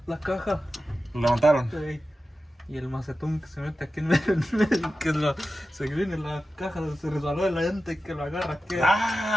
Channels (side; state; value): both; normal; correlation 0.93